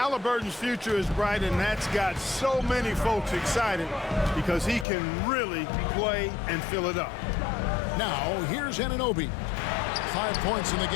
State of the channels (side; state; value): right; drops out; at 4.9 s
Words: future is bright, and that's got so many folks excited because he can really play and fill it up. Now, here's Anunoby. 5 points in the